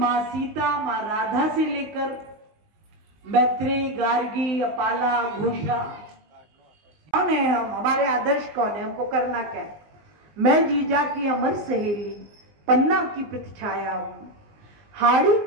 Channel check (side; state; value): left; late; 20 ms